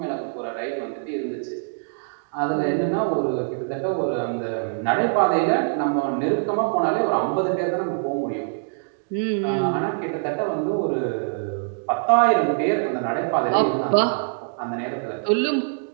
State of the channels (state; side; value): silent; left; digital silence